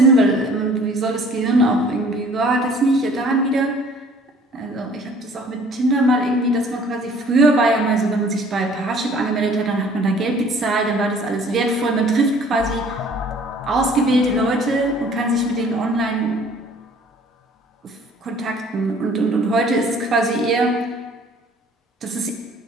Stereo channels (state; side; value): normal; both; correlation 0.54